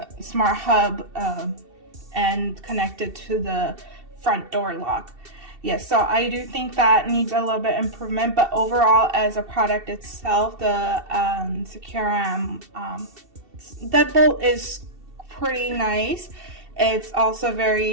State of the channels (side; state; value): left; late; 2.7 ms